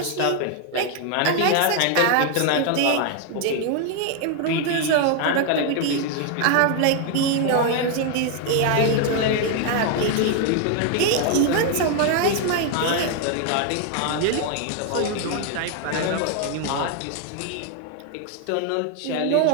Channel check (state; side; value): different; both; correlation 0.01